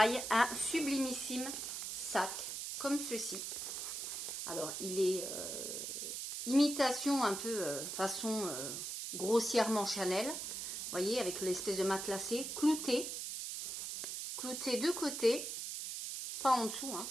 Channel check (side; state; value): right; noise; hiss, 5 dB below the sound